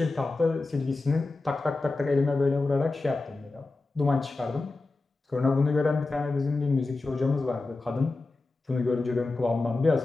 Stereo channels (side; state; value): right; quieter; 3.4 dB